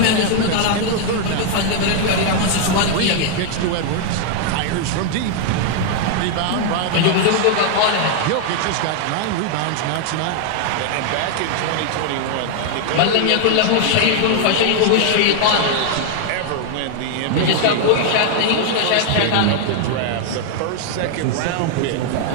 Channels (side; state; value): both; different; correlation 0.00